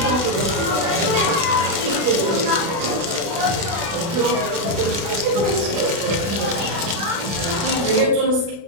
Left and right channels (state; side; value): late; left; 36 ms